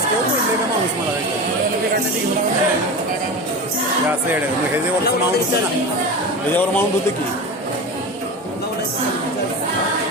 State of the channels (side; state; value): both; normal; correlation 0.27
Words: म्हणले का माणूस मला काढण्याची घेऊन हे असं येडे मग ह्याच्यावरचं माउंट होतं ना, ह्याच्यावर माउंट होतं की